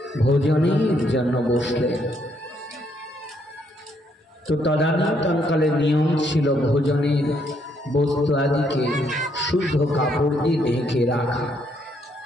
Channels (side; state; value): both; normal; correlation 0.72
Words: ভোজনের জন্য বসলেন। তো তদানীন্তনকালে নিয়ম ছিল ভোজনের বস্তু আদিকে শুদ্ধ কাপড় দিয়ে ঢেকে রাখা।